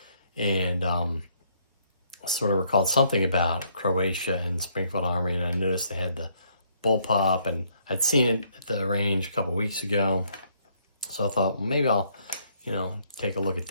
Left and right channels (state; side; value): inverted; both; correlation -0.68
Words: sort of recalled something about Croatia and Springfield Armory, and I noticed they had the Bullpup, and I'd seen it at the range a couple weeks ago, so I thought, well, maybe I'll take a look at